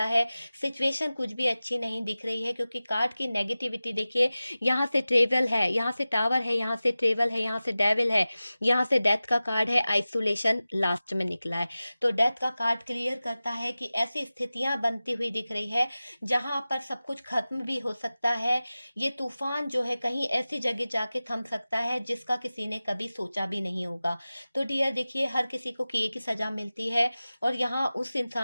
है। सिचुएशन कुछ भी अच्छी नहीं दिख रही है क्योंकि कार्ड की नेगेटिविटी देखिए, यहाँ से ट्रेवल है, यहाँ से टावर है, यहाँ से ट्रेवल है, यहाँ से डेविल है, यहाँ से डेथ का कार्ड है, आइसोलेशन लास्ट में निकला है। तो डेथ का कार्ड क्लियर करता है कि ऐसी स्थितियां बनती हुई दिख रही है जहां पर सब कुछ खत्म भी हो सकता है। ये तूफान जो है कहीं ऐसी जगह जाके थम सकता है जिसका किसी ने कभी सोचा भी नहीं होगा। तो डियर देखिए, हर किसी को किए की सजा मिलती है, और यहाँ उस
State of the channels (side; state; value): both; inverted; correlation -0.96